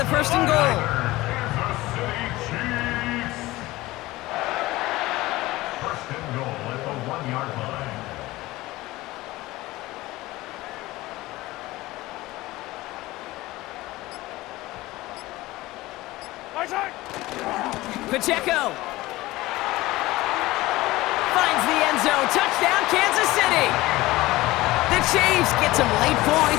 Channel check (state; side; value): quieter; right; 18.8 dB